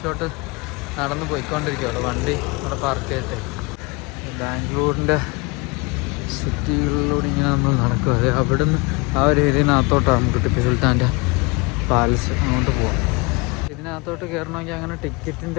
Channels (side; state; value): right; quieter; 28.1 dB